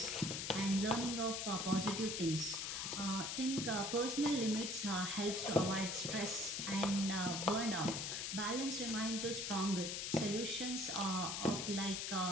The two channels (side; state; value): left; noise; hiss, 2 dB below the sound